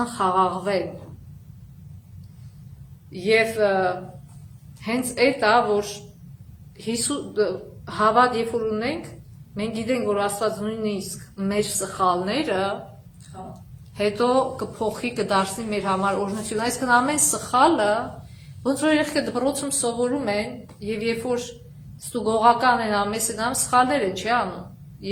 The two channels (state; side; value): identical; both; correlation 1.00